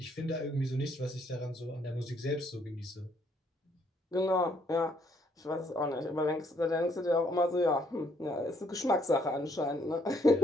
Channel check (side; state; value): both; normal; correlation 0.68